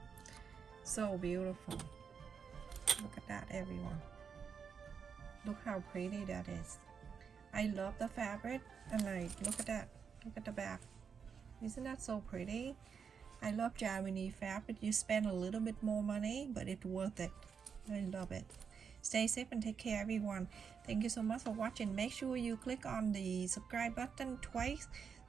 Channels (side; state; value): left; quieter; 6.5 dB